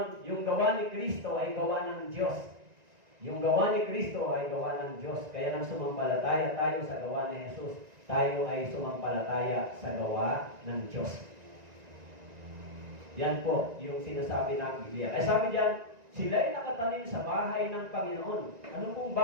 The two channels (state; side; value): late; left; 1.9 ms